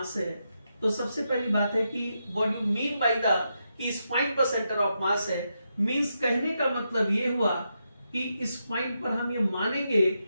है, तो सबसे पहली बात है कि what you mean by the कि इस पॉइंट पर सेंटर ऑफ मास है, मींस कहने का मतलब ये हुआ कि इस पॉइंट पर हम ये मानेंगे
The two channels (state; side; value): inverted; both; correlation -0.84